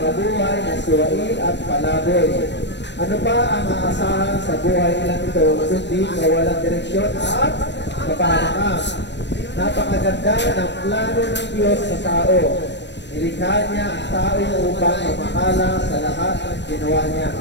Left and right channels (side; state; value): right; late; 0.51 ms